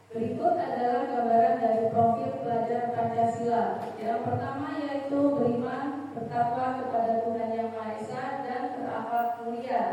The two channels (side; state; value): both; identical; correlation 1.00